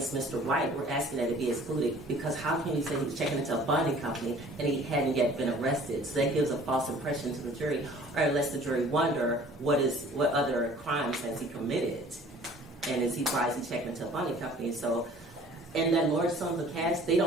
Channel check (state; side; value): normal; both; correlation 0.51